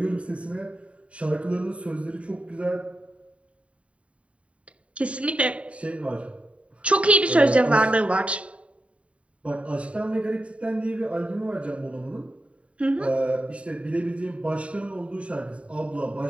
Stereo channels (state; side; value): late; left; 0.063 ms